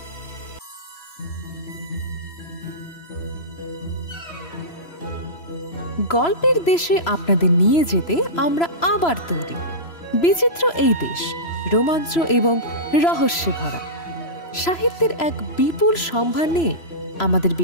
গল্পের দেশে আপনাদের নিয়ে যেতে আমরা আবার তৈরি। বিচিত্র এই দেশ রোমাঞ্চ এবং রহস্যে ভরা। সাহিত্যের এক বিপুল সম্ভার নিয়ে আমাদের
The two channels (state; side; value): late; right; 3.0 ms